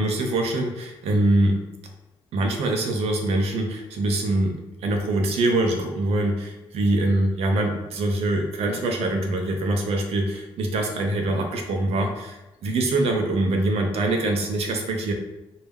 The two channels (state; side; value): normal; both; correlation 0.69